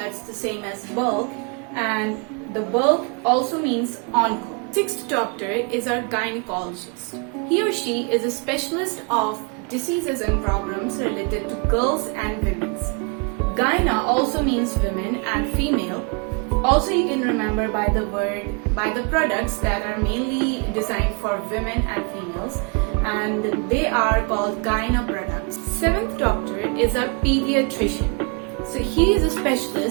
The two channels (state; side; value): quieter; left; 34.3 dB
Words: the same as bulk, and the bulk also means onco. Sixth doctor is our gynecologist. He or she is a specialist of diseases and problems related to girls and women's. Gyna also means women and female. Also you can remember by the products that are mainly designed for women and females, and they are called gyna products. Seventh doctor is a pediatrician. So he is a